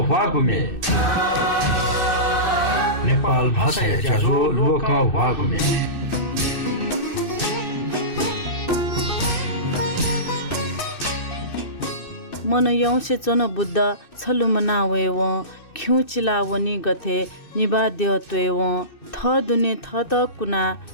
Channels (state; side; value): late; right; 2.6 ms